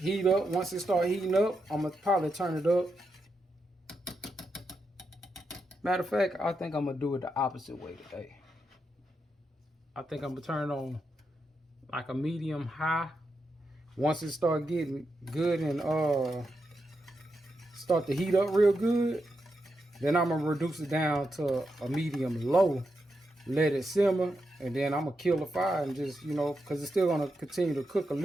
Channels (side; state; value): both; normal; correlation 0.85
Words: up. Once it start heating up, I'm going to probably turn it up. Matter of fact, I think I'm going to do it the opposite way today. I think I'm going to turn it on like a medium high. Once it start getting good and start to heat up real good, then I'm going to reduce it down to a medium low. Let it simmer, and then I'm going to kill the fire and just, you know, because it's still going to continue to cook a